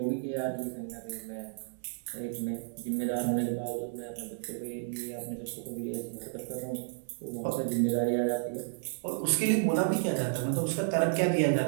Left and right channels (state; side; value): silent; left; 56 dB below the other